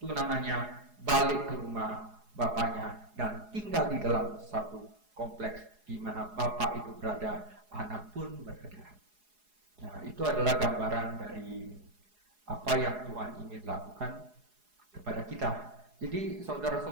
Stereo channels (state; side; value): late; left; 4.8 ms